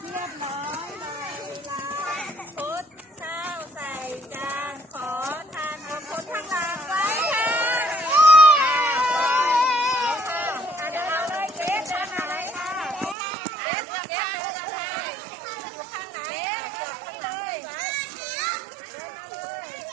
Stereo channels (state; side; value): drops out; left; at 13.2 s